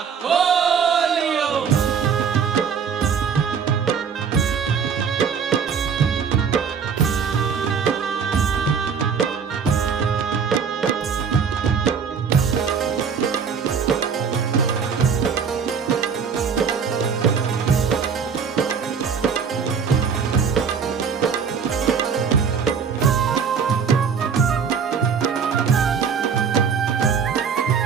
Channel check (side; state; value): left; quieter; 6.5 dB